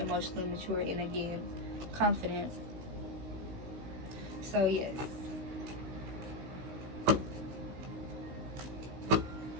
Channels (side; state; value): left; late; 16 ms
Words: mature and, again, confident. So yes.